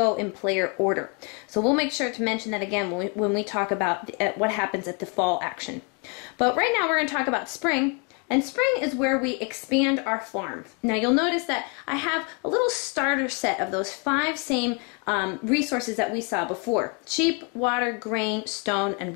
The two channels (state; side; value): quieter; right; 35.3 dB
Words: in player order. So we'll make sure to mention that again when we talk about what happens at the fall action. But right now we're going to talk about spring. And spring is where we expand our farm. Now you'll notice that I have a little starter set of those 5 same resources that we saw before: sheep, water, grain, stone, and